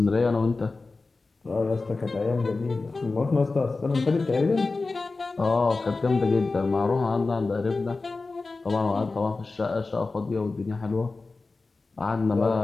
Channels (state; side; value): quieter; right; 3.7 dB